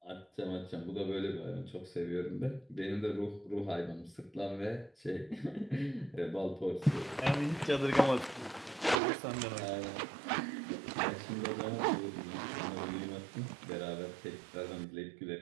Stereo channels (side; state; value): left; drops out; at 9.0 s